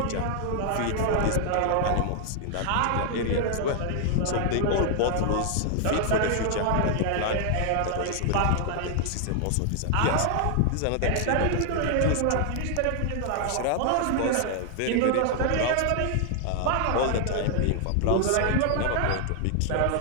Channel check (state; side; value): different; both; correlation 0.00